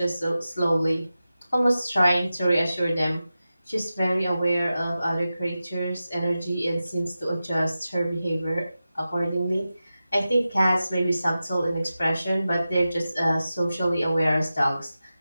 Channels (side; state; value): both; inverted; correlation -0.93